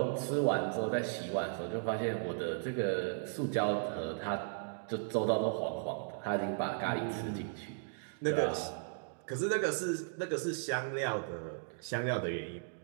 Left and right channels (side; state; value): left; silent; digital silence